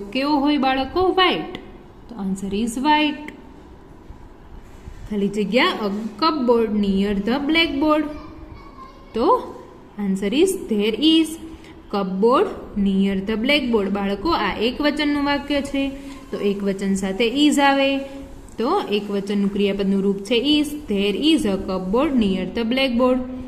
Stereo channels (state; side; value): identical; both; correlation 1.00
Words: કેવો હોય બાળકો? વ્હાઇટ. તો આન્સર ઇઝ વ્હાઇટ. ખાલી જગ્યા a cupboard near the blackboard. તો answer is there is cupboard near the blackboard. બાળકો આ એક વચનનું વાક્ય છે. તો એક વચન સાથે ઇઝ આવે. તો એક વચનનું ક્રિયાપદનું રૂપ છે is. There is a cupboard near the blackboard.